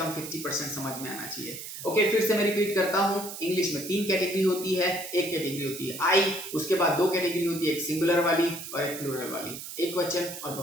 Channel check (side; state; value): right; noise; hiss, 10 dB below the sound